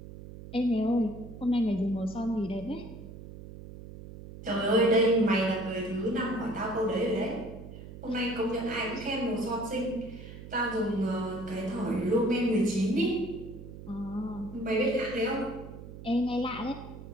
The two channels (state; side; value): noise; right; hum, 13 dB below the sound